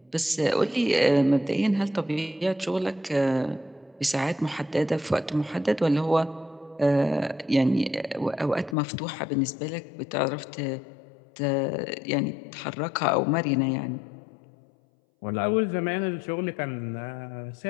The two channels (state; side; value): drops out; right; at 8.8 s